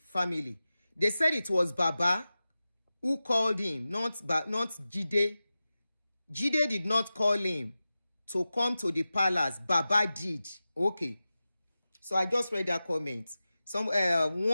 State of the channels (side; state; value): both; inverted; correlation -0.95